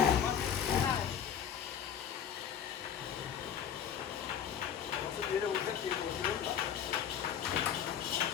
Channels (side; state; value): right; quieter; 8.6 dB